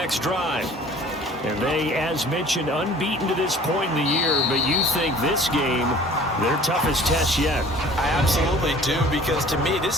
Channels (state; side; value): normal; both; correlation 0.49